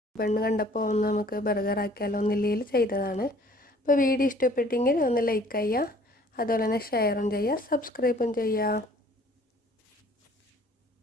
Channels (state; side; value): normal; both; correlation 0.54